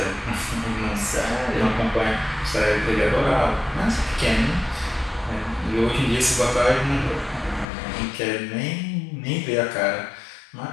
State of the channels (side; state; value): right; drops out; at 7.7 s